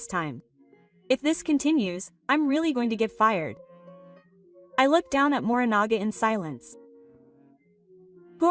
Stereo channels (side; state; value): both; identical; correlation 1.00